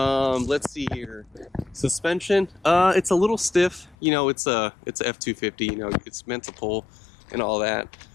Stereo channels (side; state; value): right; drops out; at 4.0 s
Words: see here. Suspension, it's a little stiff. You know, it's a F250. You know, it's meant to pull and all that.